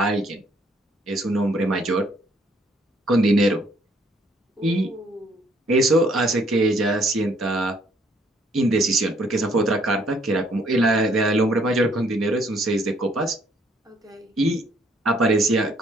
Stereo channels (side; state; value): both; normal; correlation 0.66